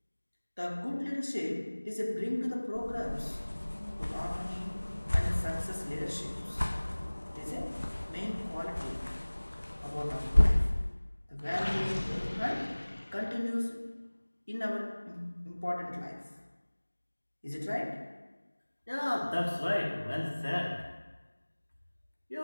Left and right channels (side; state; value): both; inverted; correlation -1.00